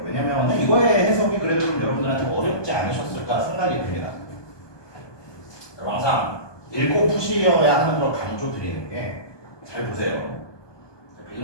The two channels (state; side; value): late; right; 1.2 ms